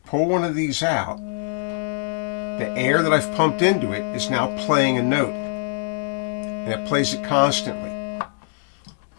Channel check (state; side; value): silent; right; 63 dB below the other